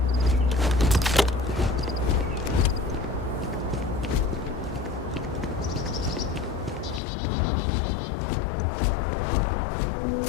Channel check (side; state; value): right; drops out; at 7.0 s